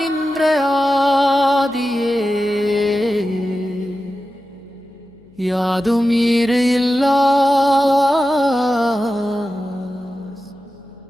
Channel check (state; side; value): noise; left; hum, 30 dB below the sound